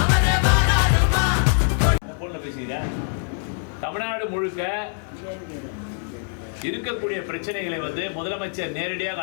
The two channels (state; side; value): silent; right; digital silence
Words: தமிழ்நாடு முழுக்க இருக்கக்கூடிய பிரச்சனைகளை முதலமைச்சர் நேரடியாக